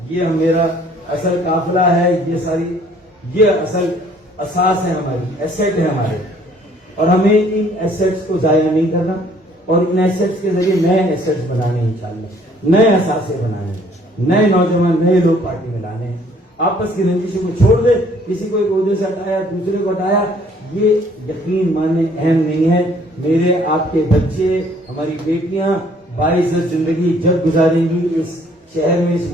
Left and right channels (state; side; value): normal; both; correlation 0.60